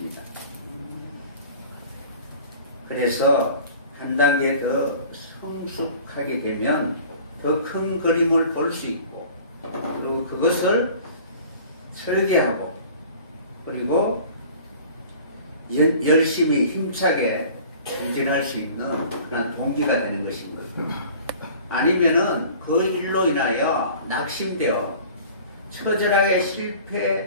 그래서 한 단계 더 성숙하게 되면 더 큰 그림을 볼 수 있고 그리고 그것을 설계하고 그리고 열심히 힘차게 전진할 수 있는 그런 동기가 되는 것입니다. 아니면은 그 일로 인하여 낙심되어 처절하게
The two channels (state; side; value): inverted; both; correlation -0.46